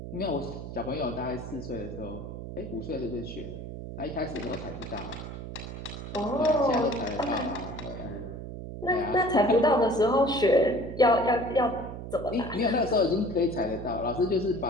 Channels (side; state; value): right; noise; hum, 9 dB below the sound